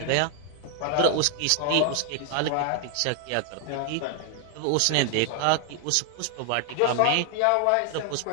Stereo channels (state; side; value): different; both; correlation 0.00